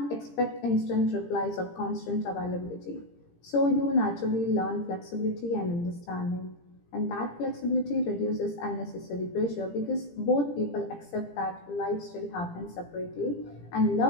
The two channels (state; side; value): late; right; 17 ms